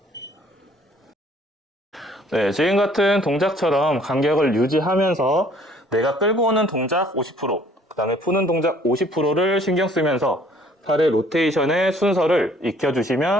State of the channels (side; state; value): both; normal; correlation 0.58